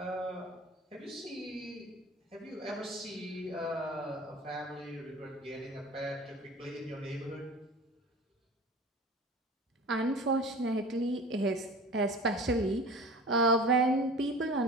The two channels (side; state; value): both; normal; correlation 0.38